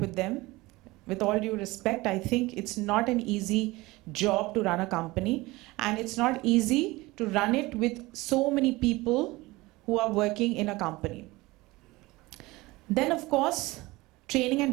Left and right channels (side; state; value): left; quieter; 20.9 dB